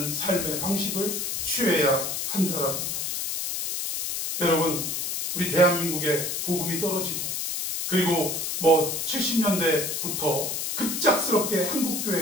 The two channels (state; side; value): noise; left; hiss, 2 dB below the sound